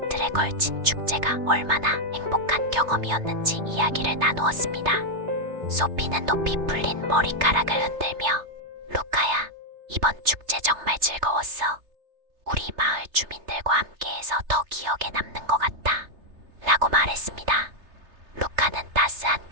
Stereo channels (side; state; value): left; late; 3.3 ms